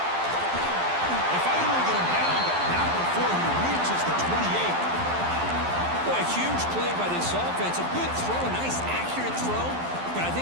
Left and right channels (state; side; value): late; left; 12 ms